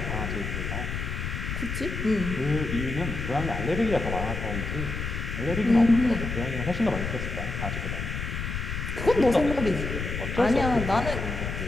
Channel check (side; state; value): left; noise; rumble, 4 dB below the sound